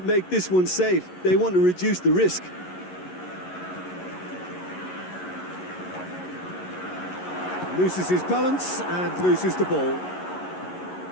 make this one safe. They want to reduce the risk. Loses his balance and loses the ball.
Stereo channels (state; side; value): late; right; 11 ms